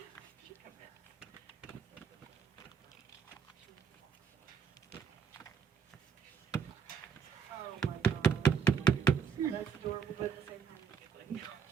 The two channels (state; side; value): quieter; left; 6.4 dB